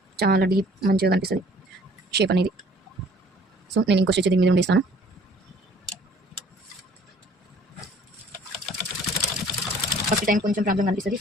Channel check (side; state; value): both; normal; correlation 0.55